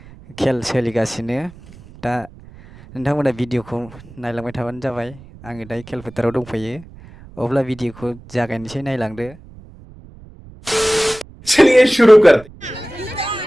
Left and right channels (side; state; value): right; noise; rumble, 21 dB below the sound